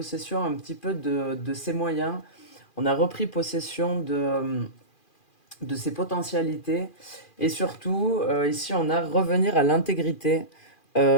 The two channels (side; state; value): right; late; 2.4 ms